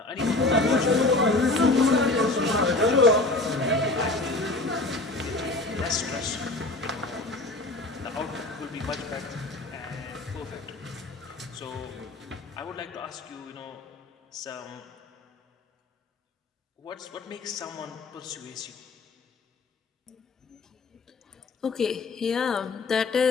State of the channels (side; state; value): right; quieter; 3.1 dB